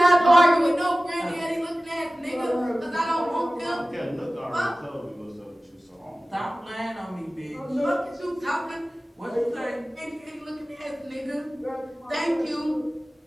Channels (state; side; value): normal; both; correlation 0.97